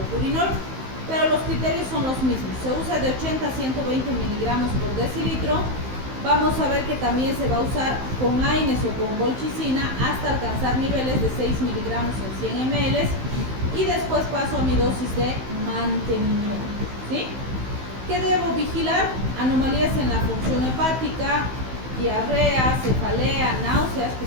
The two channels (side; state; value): left; late; 15 ms